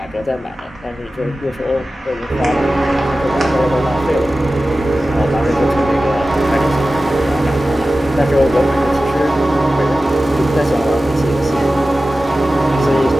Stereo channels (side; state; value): both; normal; correlation 0.95